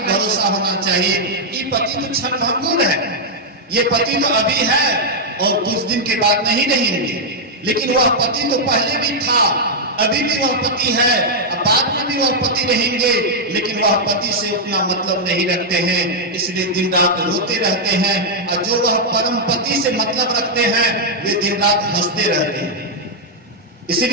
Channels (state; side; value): normal; both; correlation -0.04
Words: होना चाहिए। ये पति तो क्षण भंगुर है, ये पति तो अभी है और कुछ दिन के बाद नहीं रहेंगे, लेकिन वह पति तो पहले भी था, अभी भी वह पति है, बाद में भी वह पति रहेंगे, लेकिन वह पति से उतना मतलब नहीं रखते हैं, इसलिए दिन रात रोते रहते हैं। और जो वह परम पति से मतलब रखते हैं, वे दिन रात हंसते रहते हैं।